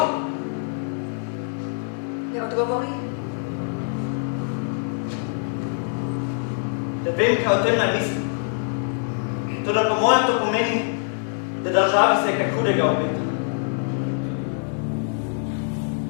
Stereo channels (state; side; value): silent; right; 62 dB below the other